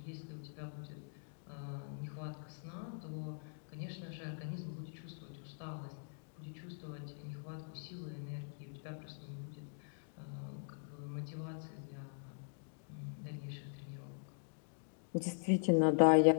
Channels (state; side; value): silent; right; digital silence